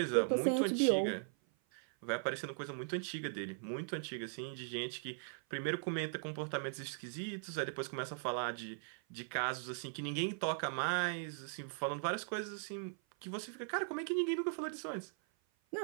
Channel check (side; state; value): left; silent; 52 dB below the other